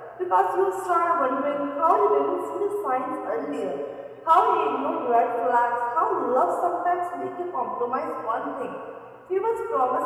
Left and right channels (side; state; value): both; identical; correlation 1.00